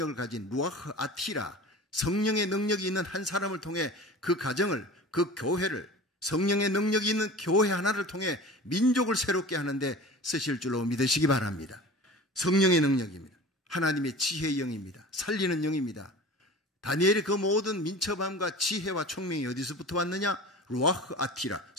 가진 루아흐 아티라, 성령의 능력이 있는 한 사람을 통해 그 가정을, 그 교회를, 성령의 능력이 있는 교회 하나를 통해 민족을 새롭게 하는데 쓰실 줄로 믿으시기 바랍니다. 성령의 능력입니다. 하나님의 지혜의 영입니다. 살리는 영입니다. 다니엘의 그 모든 민첩함과 지혜와 총명이 어디서부터 왔느냐? 루아흐 아티라,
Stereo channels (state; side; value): normal; both; correlation 0.37